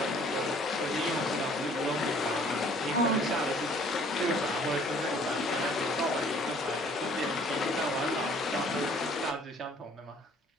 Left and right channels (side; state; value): both; normal; correlation 0.56